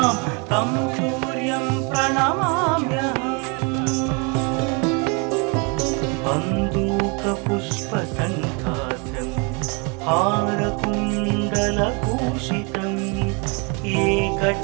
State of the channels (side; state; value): left; quieter; 32.5 dB